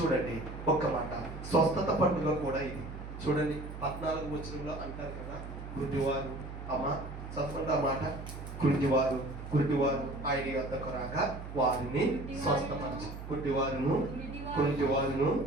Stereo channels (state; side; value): noise; right; hum, 10 dB below the sound